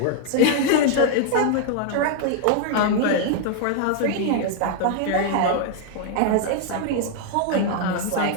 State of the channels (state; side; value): different; both; correlation 0.00